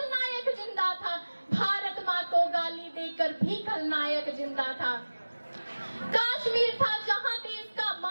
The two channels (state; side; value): inverted; both; correlation -1.00